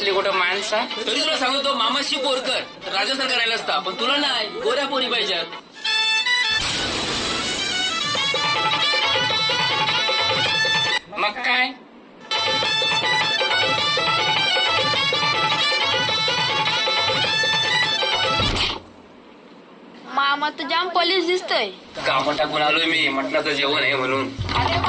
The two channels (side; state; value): both; identical; correlation 1.00